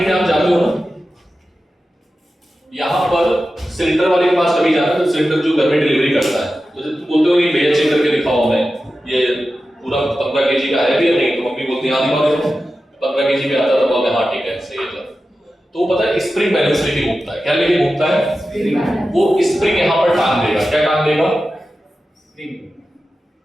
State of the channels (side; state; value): both; normal; correlation 0.93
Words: में आप जाते हो ना, यहाँ पर सिलेंडर वाले के पास कभी जाते हो तो सिलेंडर जो घर में डिलीवरी करता है, तो जब तुम बोलते हो कि भैया चेक करके दिखाओ हमें ये पूरा 15 kg का है भी या नहीं, तो मम्मी बोलती है हाँ दिखाओ देखो 15 kg पे आता, तो बोलते हैं हाँ ठीक है सही है। तो वो पता है स्प्रिंग बैलेंस लेके घूमता है। क्या लेके घूमता है? वो स्प्रिंग यहाँ पर टांग देगा। क्या टांग देगा?